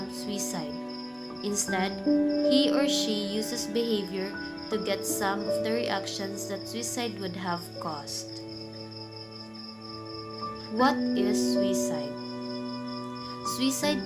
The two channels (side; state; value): both; identical; correlation 1.00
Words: suicide. Instead, he or she uses behavior to get some of the reactions that suicide would have caused. What is suicide?